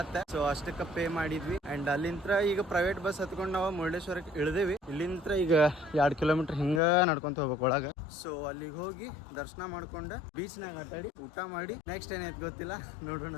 ಸೊ ಅಷ್ಟಕ್ಕೆ ಪೇ ಮಾಡಿದ್ವಿ. ಅಂಡ್ ಅಲ್ಲಿಂದ ಈಗ ಪ್ರೈವೇಟ್ ಬಸ್ ಹತ್ಕೊಂಡು ನಾವು ಮುರುಡೇಶ್ವರಕ್ಕೆ ಇಳಿದೇವಿ. ಇಲ್ಲಿಂದ ಈಗ 2 ಕಿಲೋಮೀಟರ್ ಹಿಂಗ ನಡ್ಕೊಂತ ಹೋಗ್ಬೇಕು ಒಳಗ. ಸೊ ಅಲ್ಲಿಗೆ ಹೋಗಿ ದರ್ಶನ ಮಾಡ್ಕೊಂಡು ಬೀಚ್ನಾಗ ಆಟಾಡಿ ಊಟ ಮಾಡಿ ನೆಕ್ಸ್ಟ್ ಏನೈತಿ ಗೊತ್ತಿಲ್ಲ, ನೋಡೋಣ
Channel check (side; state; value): right; drops out; at 6.8 s